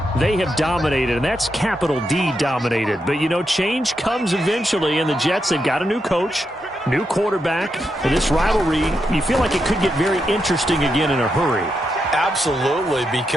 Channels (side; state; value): both; normal; correlation 0.84